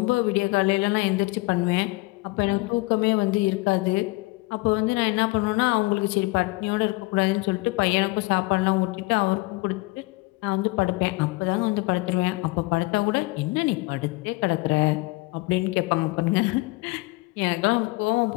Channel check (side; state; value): right; quieter; 23.0 dB